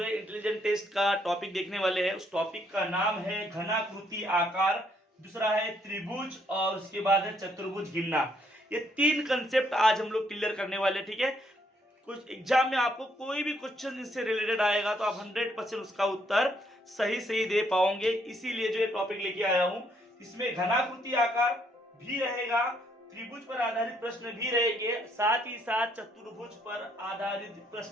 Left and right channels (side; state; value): both; normal; correlation 0.71